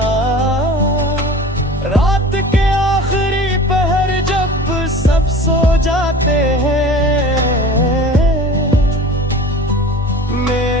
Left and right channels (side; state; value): both; normal; correlation 0.39